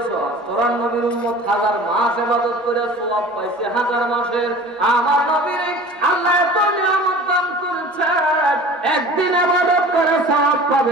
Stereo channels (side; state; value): both; normal; correlation 0.42